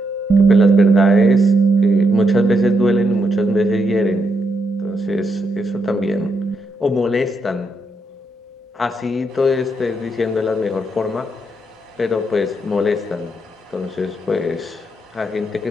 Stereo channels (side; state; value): both; normal; correlation 0.80